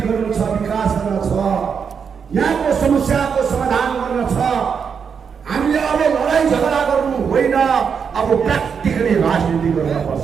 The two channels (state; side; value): quieter; left; 6.5 dB